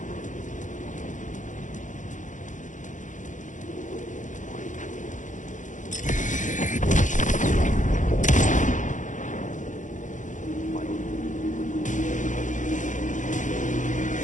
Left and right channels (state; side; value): late; right; 0.37 ms